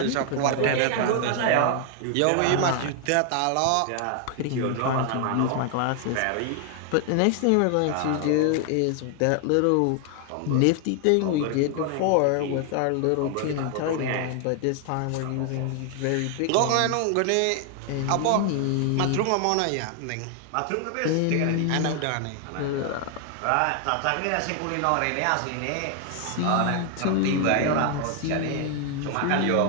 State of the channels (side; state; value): both; different; correlation 0.00